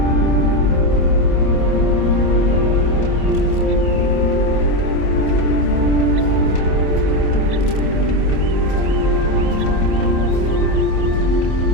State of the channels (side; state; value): right; late; 27 ms